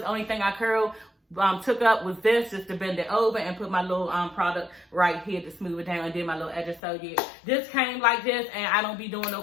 Only thing I took up was this, just to bend it over and put my little product right here to smooth it down and did my little edges. So this came like this, and I don't be doing no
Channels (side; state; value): right; drops out; at 6.8 s